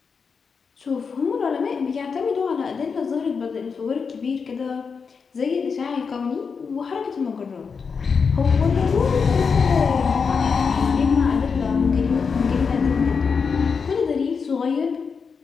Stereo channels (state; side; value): quieter; right; 5.6 dB